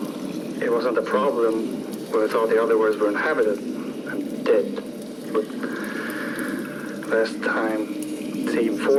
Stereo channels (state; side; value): identical; both; correlation 1.00